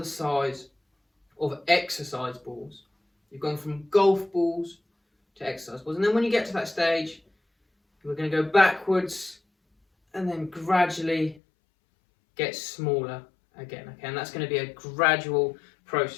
size of exercise balls. You've gone from golf balls to exercise balls. And then when you get to that stage, we're going to go backwards and then gradually get smaller again. Okay, and that's going to be a gradual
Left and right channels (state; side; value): drops out; right; at 11.4 s